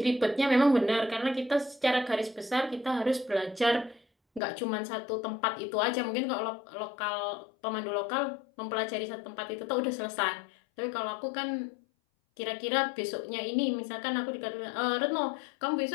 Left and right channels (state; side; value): drops out; right; at 4.4 s